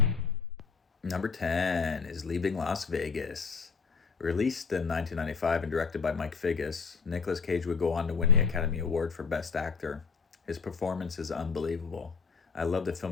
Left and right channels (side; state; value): right; quieter; 5.5 dB